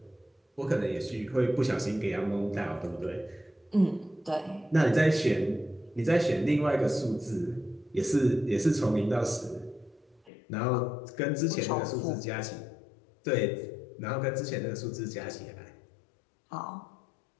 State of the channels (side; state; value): right; drops out; at 10.3 s